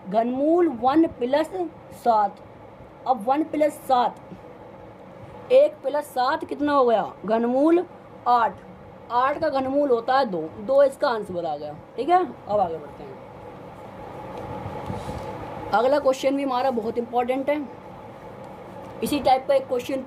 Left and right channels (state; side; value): identical; both; correlation 1.00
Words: घनमूल 1 प्लस 7। अब 1 प्लस 7, 1 प्लस 7 कितना हो गया? घनमूल 8। 8 का घनमूल होता है 2, 2 इसका आंसर आ गया। ठीक है, अब आगे बढ़ते हैं। अगला क्वेश्चन भी हमारा बहुत इंपॉर्टेंट है। इसी टाइप का एक क्वेश्चन